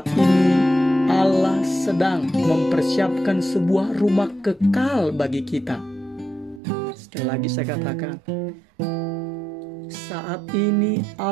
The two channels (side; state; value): left; drops out; at 6.6 s